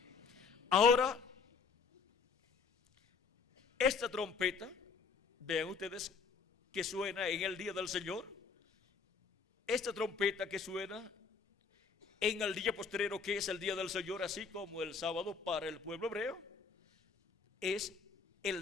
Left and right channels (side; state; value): right; quieter; 5.2 dB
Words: Ahora, esta trompeta, vean ustedes que suena en el día del Señor, esta trompeta que suena en el día postrero, que es el día del Señor, así como el sábado para el pueblo hebreo, es